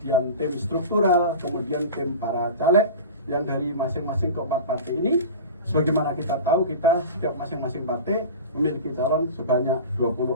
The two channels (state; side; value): inverted; both; correlation -0.32